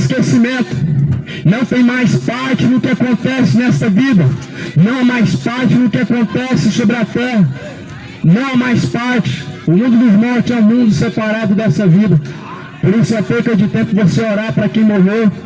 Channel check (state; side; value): identical; both; correlation 1.00